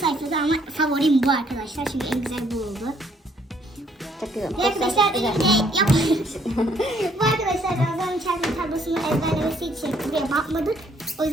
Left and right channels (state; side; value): normal; both; correlation 0.66